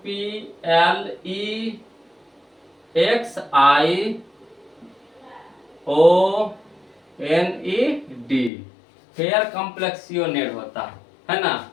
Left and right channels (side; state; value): right; drops out; at 8.5 s